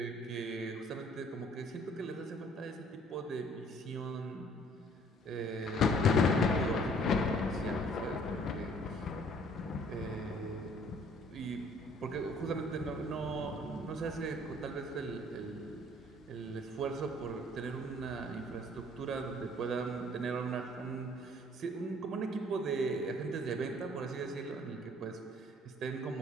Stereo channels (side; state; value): both; normal; correlation 0.57